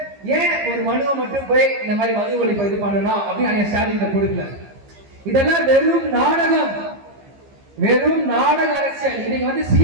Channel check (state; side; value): late; left; 15 ms